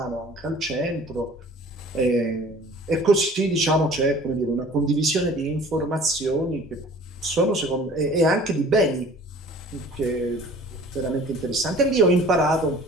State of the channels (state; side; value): normal; both; correlation 0.48